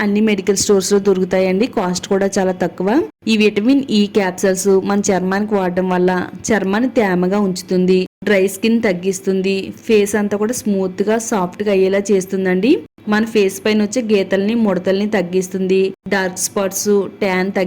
అన్ని మెడికల్ స్టోర్స్ లో దొరుకుతాయండి. కాస్ట్ కూడా చాలా తక్కువ. ఈ విటమిన్ ఈ క్యాప్సిల్స్ మన చర్మానికి వాడడం వల్ల చర్మాన్ని తేమగా ఉంచుతుంది. డ్రై స్కిన్ తగ్గిస్తుంది. ఫేస్ అంతా కూడా స్మూత్ గా సాఫ్ట్ గా అయ్యేలా చేస్తుందండి. మన ఫేస్ పైన వచ్చే గీతల్ని ముడతల్ని తగ్గిస్తుంది. డార్క్ స్పాట్స్ ట్యాన్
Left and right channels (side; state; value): both; identical; correlation 1.00